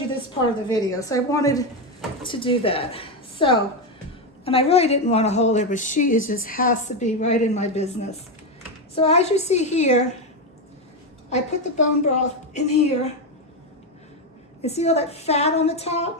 this part of the video, so I wanted to do that. So, and I really didn't want to hold her, but she just has to be right in my business. So as you see here, I put the bone broth in here. You see all that fat on the top?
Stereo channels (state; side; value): normal; both; correlation 0.09